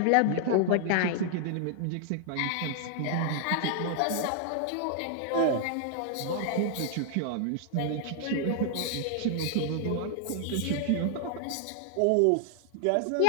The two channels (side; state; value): both; different; correlation 0.00